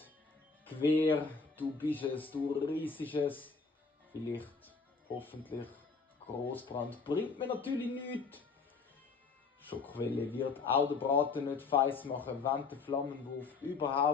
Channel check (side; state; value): right; quieter; 4.8 dB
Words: Quer, du bist es, du riesiges. Vielleicht, hoffentlich, Großbrand. Bringt mir natürlich nichts. Schockwelle wird auch den Braten nicht feiss machen, wenn der Flammenwurf